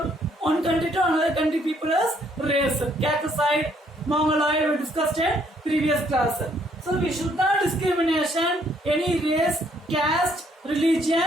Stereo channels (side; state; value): both; normal; correlation 0.67